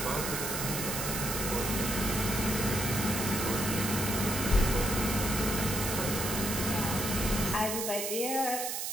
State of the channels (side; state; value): right; noise; hiss, 2 dB below the sound